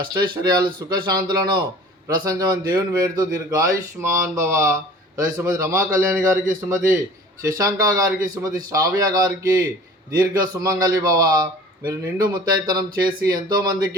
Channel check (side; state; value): both; normal; correlation 0.45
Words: అష్టైశ్వర్యాలు సుఖశాంతులను ప్రశంసమని దేవుని వేడుతూ దీర్ఘాయుష్మాన్ భవ. అలాగే శ్రీమతి రమా కళ్యాణి గారికి, శ్రీమతి శశాంక గారికి, శ్రీమతి శ్రావ్య గారికి దీర్ఘ సుమంగళి భవ. మీరు నిండు ముత్తైతనం చేసి